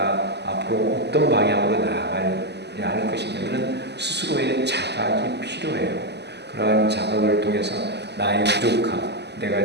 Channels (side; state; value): left; late; 0.50 ms